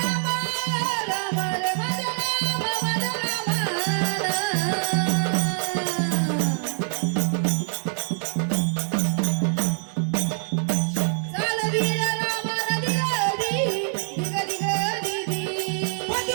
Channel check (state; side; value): silent; left; 57 dB below the other